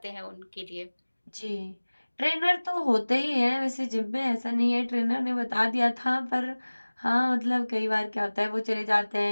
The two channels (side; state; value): both; inverted; correlation -1.00